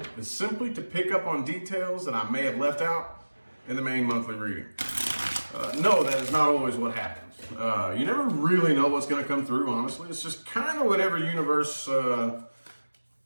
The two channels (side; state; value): both; inverted; correlation -1.00